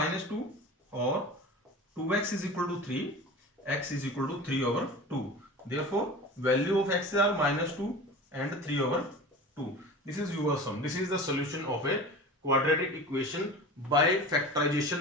और 2x is equal to 3, x is equal to 3/2। Therefore, value of x are -2 and 3/2. This is your sum. This is the solution of a quadratic equation by factorization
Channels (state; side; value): normal; both; correlation 0.35